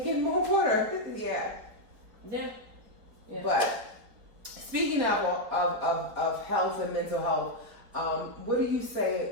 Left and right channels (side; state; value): left; late; 4.3 ms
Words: in more water. Yeah. But speaking of health and mental health, what do you